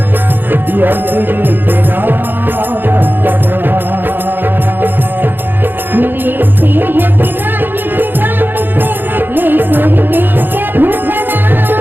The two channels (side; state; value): left; late; 0.096 ms